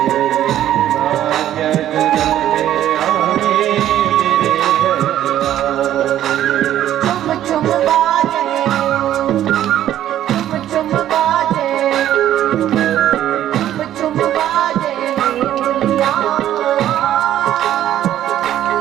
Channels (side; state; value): left; quieter; 12.0 dB